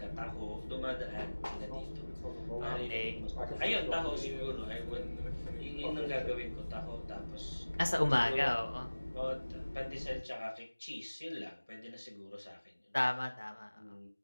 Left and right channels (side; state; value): both; inverted; correlation -1.00